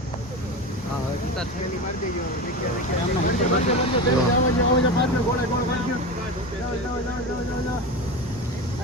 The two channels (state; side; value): normal; both; correlation 0.25